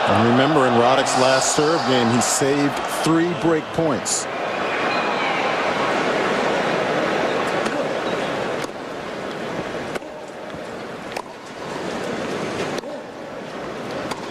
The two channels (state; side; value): identical; both; correlation 1.00